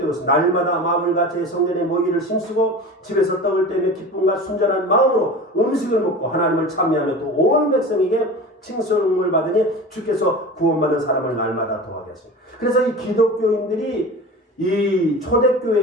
있습니다. 날마다 마음을 같이 성전에 모이기를 힘쓰고 집에서 떡을 떼며 기쁨과 순전한 마음으로 음식을 먹고 하나님을 찬미하며 또 온 백성에게 칭송을 받으니 주께서 구원받은 사람을 날마다 더하게 하십니다. 그래서 이 기독교인들이 이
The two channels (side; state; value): both; normal; correlation 0.33